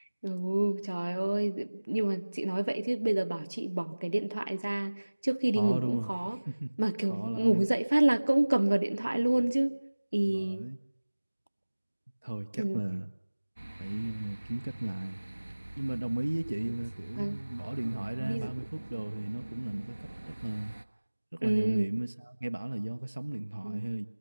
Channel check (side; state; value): both; inverted; correlation -1.00